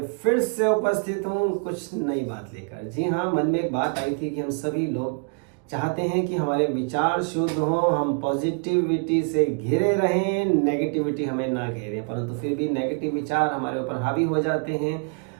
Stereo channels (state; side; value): quieter; left; 36.7 dB